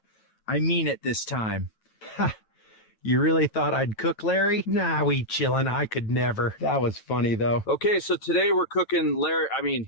I mean it this time. Ha! You really thought I'd cook, Larry? Nah, we chillin'. I could never. That was funny, though. Okay, so today we're cooking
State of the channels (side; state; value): right; late; 9.1 ms